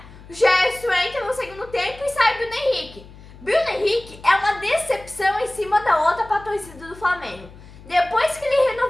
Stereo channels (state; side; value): noise; left; hum, 20 dB below the sound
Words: O Gerson entra no segundo tempo e sai Bruno Henrique. Bruno Henrique é uma decepção em cima da outra para a torcida do Flamengo. Depois que ele